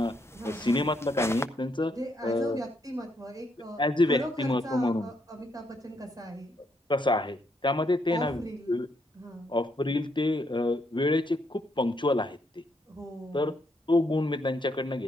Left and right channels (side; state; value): both; normal; correlation 0.75